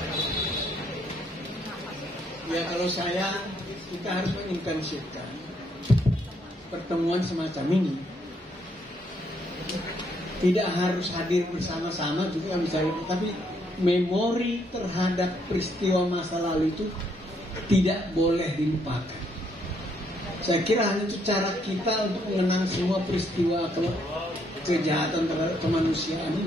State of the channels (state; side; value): normal; both; correlation 0.72